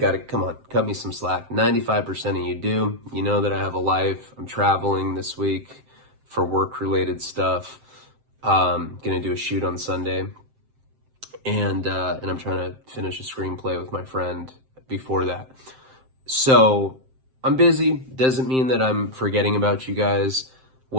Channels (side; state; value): left; late; 7.7 ms